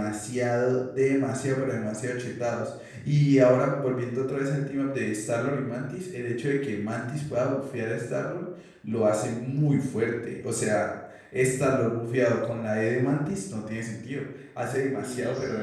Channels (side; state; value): both; identical; correlation 1.00